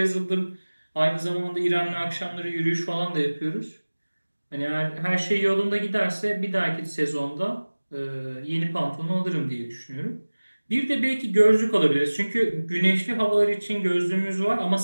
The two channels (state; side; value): inverted; both; correlation -1.00